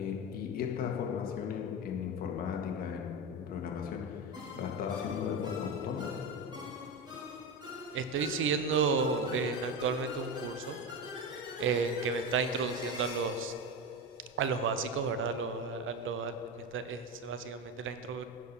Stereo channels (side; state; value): both; normal; correlation 0.19